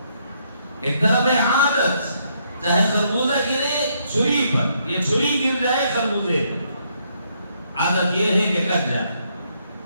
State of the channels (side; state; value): both; inverted; correlation -0.73